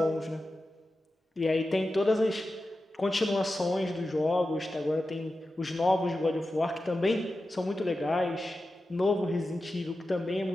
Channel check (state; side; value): normal; both; correlation 0.92